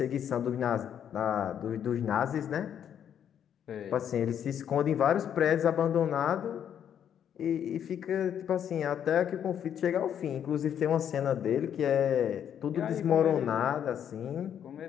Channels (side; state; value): right; quieter; 9.1 dB